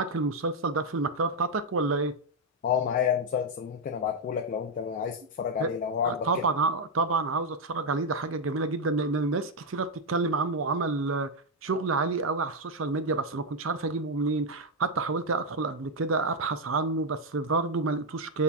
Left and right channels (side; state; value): both; normal; correlation 0.01